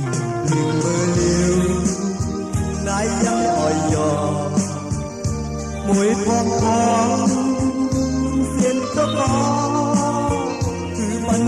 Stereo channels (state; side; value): identical; both; correlation 1.00